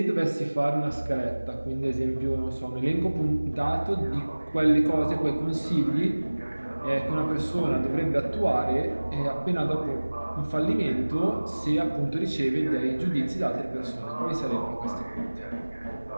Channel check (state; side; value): inverted; both; correlation -1.00